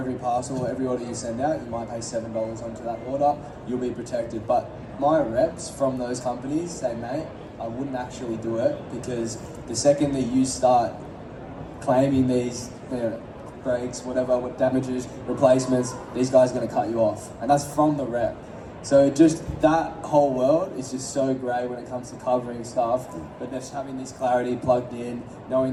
parcel, every order you send out, you might pay $7 onto that order, you'll be protected. But my reps from those companies say, mate, I wouldn't actually do it, because the second that you start claiming these, you know, breaks, whatever, what damages, replacements, these guys are going to cut you off. And that's from the rep. So just that whole world is just so great when it comes to covering stuff, but just having this clarity plugged in,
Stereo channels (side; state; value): both; identical; correlation 1.00